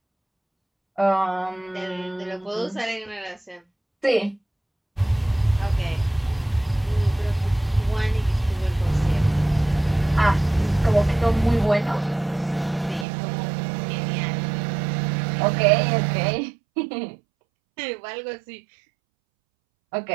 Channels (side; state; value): left; drops out; at 13.1 s